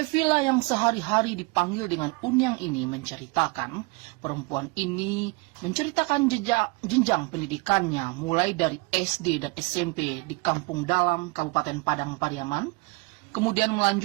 yang sehari-hari dipanggil dengan Unyang ini menceritakan, perempuan ini menceritakan jenjang pendidikannya mulai dari SD dan SMP di Kampung Dalam, Kabupaten Padang Pariaman, kemudian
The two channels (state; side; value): quieter; left; 27.2 dB